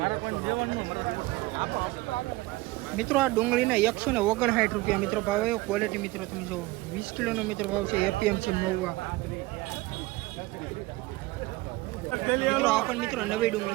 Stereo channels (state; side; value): quieter; left; 20.7 dB